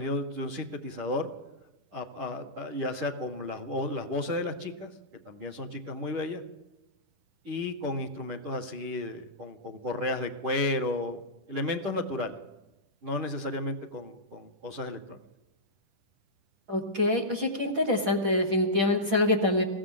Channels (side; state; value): left; late; 10 ms